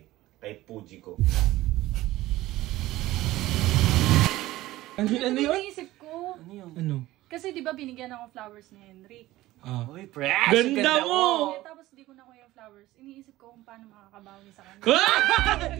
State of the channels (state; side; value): quieter; left; 16.7 dB